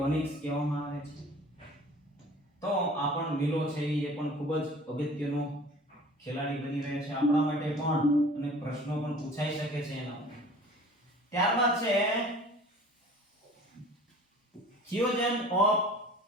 કહેવામાં આવે છે. તો આ પણ મિલો છે એ પણ ખૂબ જ અગત્યનો ખેલાડી બની રહ્યા છે આપણા માટે પણ, અને પ્રશ્નો પણ પૂછાઈ શકે છે એના. ત્યારબાદ છે થિયોજન ઓફ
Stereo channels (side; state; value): both; normal; correlation 0.46